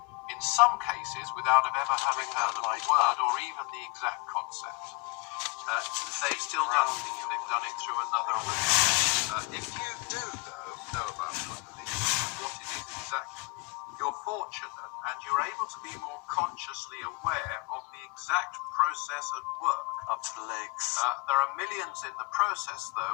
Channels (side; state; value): right; quieter; 28.4 dB